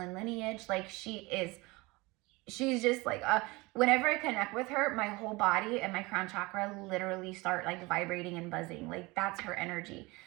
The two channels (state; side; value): quieter; left; 23.5 dB